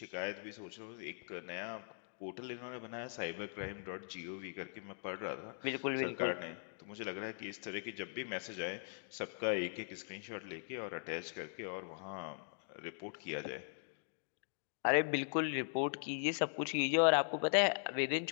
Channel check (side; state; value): right; silent; digital silence